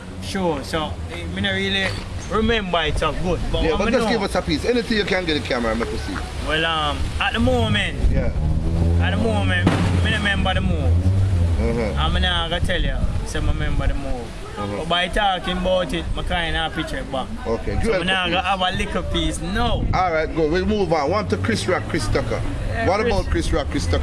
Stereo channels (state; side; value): identical; both; correlation 1.00